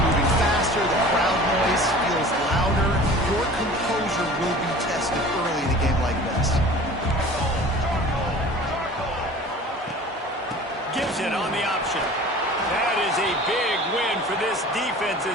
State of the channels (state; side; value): normal; both; correlation 0.43